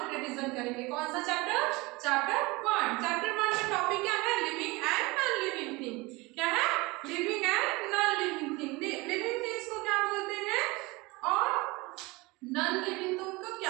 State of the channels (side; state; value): left; quieter; 23.7 dB